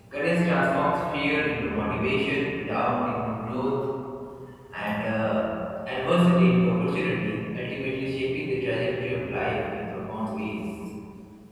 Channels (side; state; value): both; identical; correlation 1.00